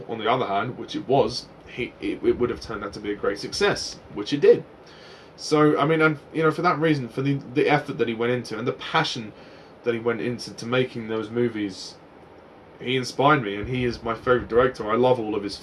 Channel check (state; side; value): identical; both; correlation 1.00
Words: on the other hand, which it was, it would have turned out to be a great success, which it did. So I mean, and for that reason, for the effort that he went into and the passion that he went into to making those movies, he inspired me, and he is my favourite director. I love all of his